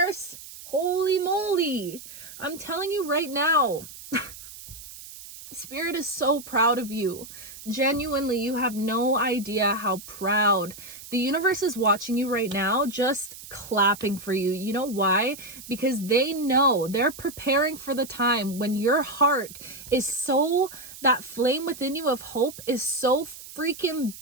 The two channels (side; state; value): right; noise; hiss, 15 dB below the sound